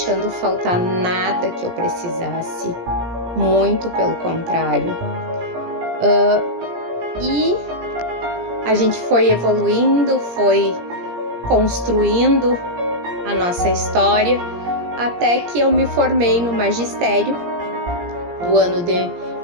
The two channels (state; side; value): late; left; 17 ms